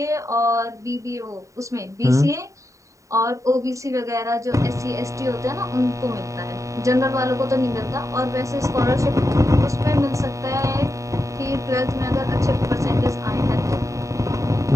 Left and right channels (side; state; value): left; late; 0.16 ms